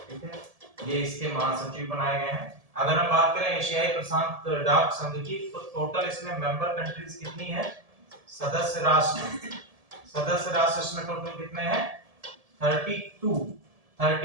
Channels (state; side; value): late; left; 1.7 ms